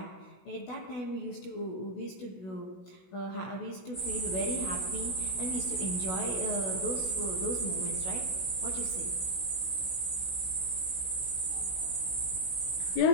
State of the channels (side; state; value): right; late; 16 ms